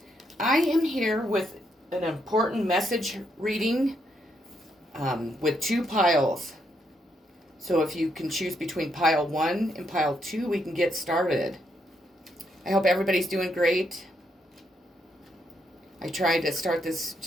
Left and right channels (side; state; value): both; normal; correlation 0.77